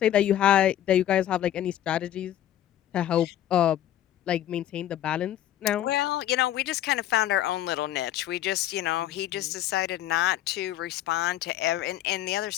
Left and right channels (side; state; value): right; quieter; 12.0 dB